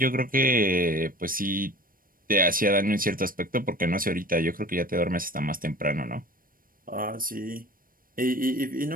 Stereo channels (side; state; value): left; late; 0.41 ms